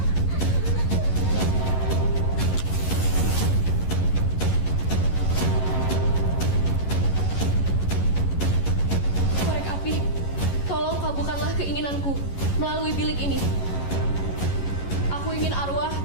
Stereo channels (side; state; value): right; late; 11 ms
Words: Korek api, tolong kabulkanlah keinginanku melalui bilik ini. Aku ingin arwah